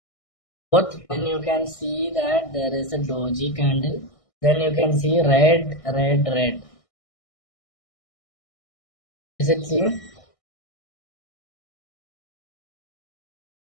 then you can see that there is a doji candle. Then you can see red, red, red. Is it seen?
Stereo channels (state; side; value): late; right; 1.6 ms